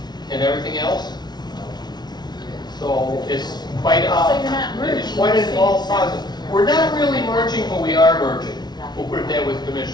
and everything else. So it's quite So you're not merging. It's quite an involved process. We're not really merging, but we are merging. We'll put it that with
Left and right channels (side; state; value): right; late; 0.20 ms